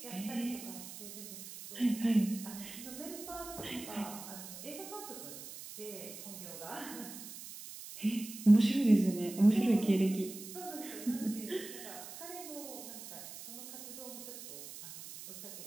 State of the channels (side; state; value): right; noise; hiss, 12 dB below the sound